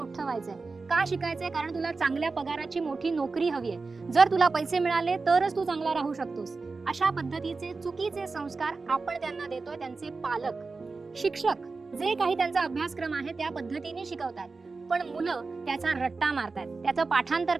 व्हायचंय. का शिकायचंय? कारण तुला चांगल्या पगाराची मोठी नोकरी हवी आहे. जर तुला पैसे मिळाले तरच तू चांगला राहू शकतोस. अशा पद्धतीचे चुकीचे संस्कार आपण त्यांना देतोय. त्यांचे पालक, शिक्षक जे काही त्यांचा अभ्यासक्रम आहे त्या पद्धतीने शिकवतात, पण मुलं त्याचा रट्टा मारतात, त्याचं पाठांतर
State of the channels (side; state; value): left; quieter; 4.1 dB